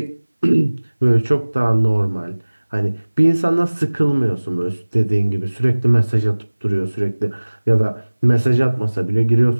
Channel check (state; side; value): inverted; both; correlation -1.00